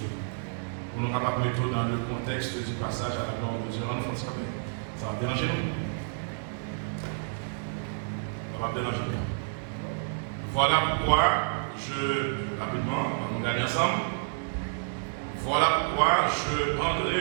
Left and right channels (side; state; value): left; silent; digital silence